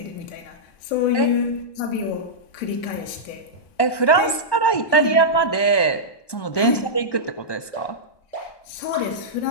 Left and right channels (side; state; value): right; late; 1.1 ms